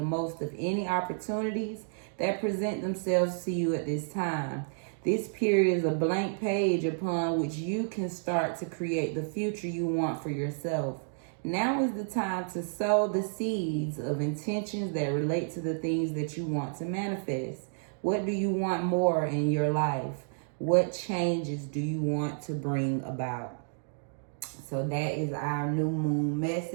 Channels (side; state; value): left; silent; digital silence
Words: most of any opportunities that present themselves to you at this time. This period is a blank page upon which you can start to create the future you want for yourself. Now is the time to sow the seeds of intentions that relate to the things that you want to manifest. What do you want more in your life? What changes do you want to bring about? So that is our new moon